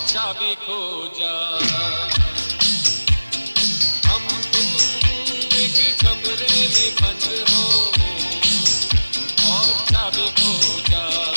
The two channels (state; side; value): inverted; both; correlation -1.00